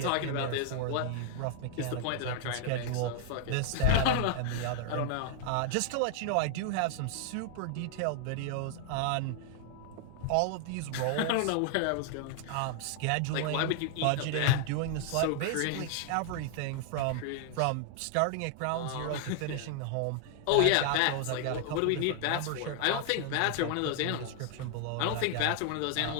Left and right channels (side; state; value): both; different; correlation 0.00